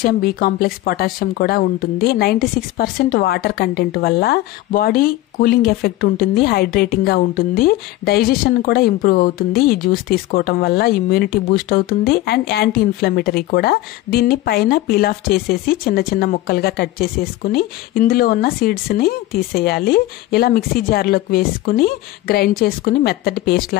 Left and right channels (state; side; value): quieter; right; 16.3 dB